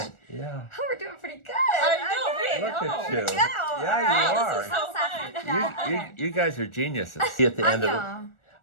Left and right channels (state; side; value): late; right; 1.4 ms